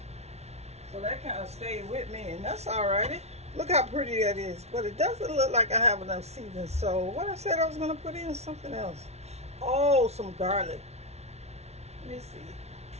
So that kind of stayed with me, and that's all right. Look how pretty that is. But it doesn't look like I have enough seasoning. So what I said I was going to put in something else. Oh, some garlic. Let me see.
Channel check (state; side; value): late; left; 0.31 ms